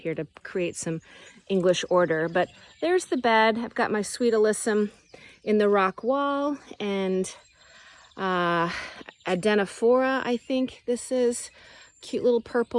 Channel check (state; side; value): identical; both; correlation 1.00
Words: here to create some English order. But there's the bed. I've got my sweet alyssum in the rock wall, and Adenophora, I think this is. Cute little